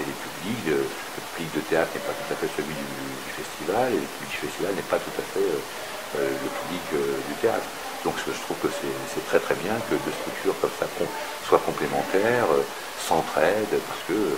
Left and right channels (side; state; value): both; identical; correlation 1.00